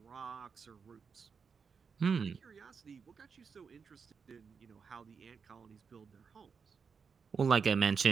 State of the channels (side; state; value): left; quieter; 5.8 dB